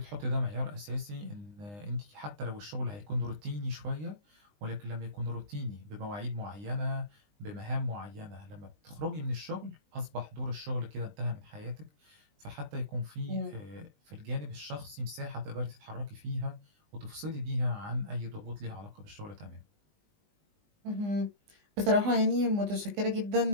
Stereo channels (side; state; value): left; late; 20 ms